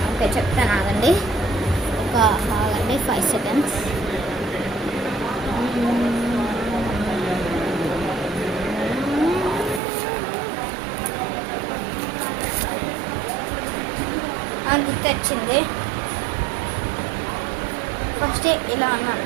ఓకే, చెప్తాను, ఆగండి. ఆగండి 5 seconds. గుర్తొచ్చింది. ఫస్ట్ ఇలా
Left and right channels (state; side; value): drops out; left; at 9.8 s